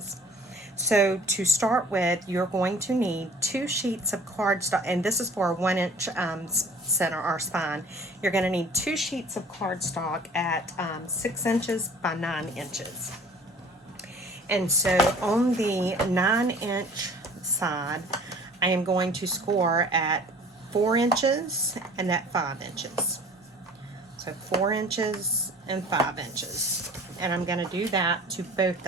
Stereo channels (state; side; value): normal; both; correlation 0.48